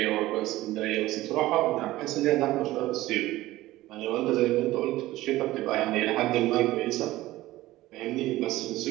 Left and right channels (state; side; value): quieter; left; 16.9 dB